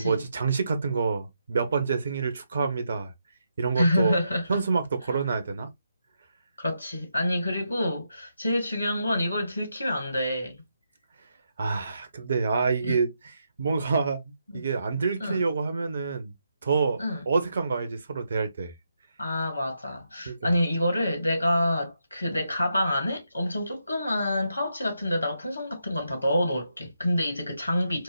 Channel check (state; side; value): inverted; both; correlation -0.82